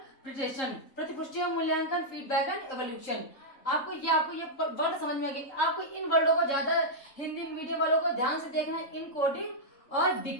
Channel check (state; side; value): late; right; 3.6 ms